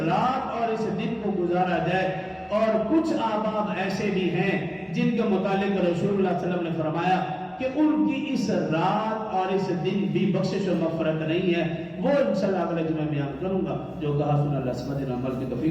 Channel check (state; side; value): identical; both; correlation 1.00